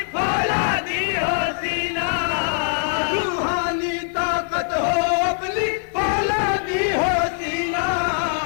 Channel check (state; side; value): silent; right; 64 dB below the other